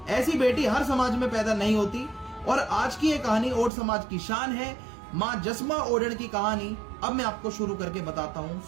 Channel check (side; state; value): left; drops out; at 3.7 s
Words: ऐसी बेटी हर समाज में पैदा नहीं होती, और आज की ये कहानी ओड समाज की शान है। मां जसमा ओडण की कहानी अब मैं आपको शुरू करके बताता हूँ।